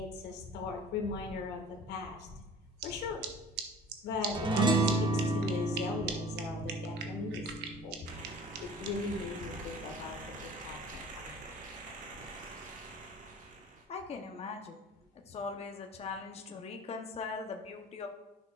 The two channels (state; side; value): normal; both; correlation 0.46